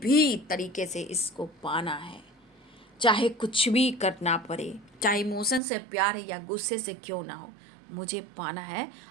तरीके से इसको पाना है, चाहे कुछ भी करना पड़े, चाहे इमोशन से प्यार है या गुस्से से क्यों ना हो, मुझे पाना है।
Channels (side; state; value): left; drops out; at 5.6 s